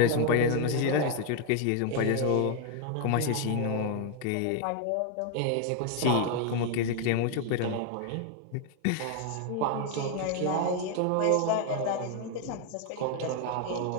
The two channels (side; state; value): both; different; correlation 0.01